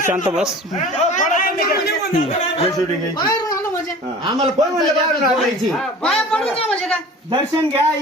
बस आम्हाला फोडायची दर्शन घ्या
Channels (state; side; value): normal; both; correlation 0.42